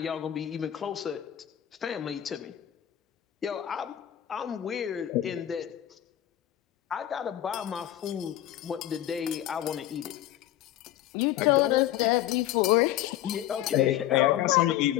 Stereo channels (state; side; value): quieter; right; 12.7 dB